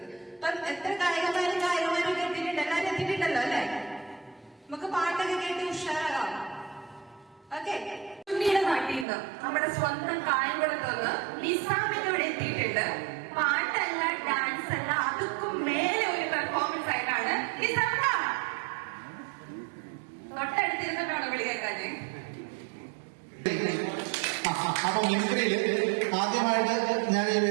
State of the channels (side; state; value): left; drops out; at 9.1 s